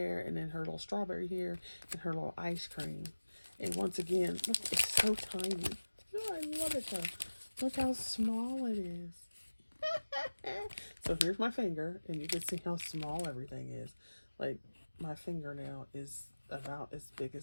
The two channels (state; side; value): inverted; both; correlation -1.00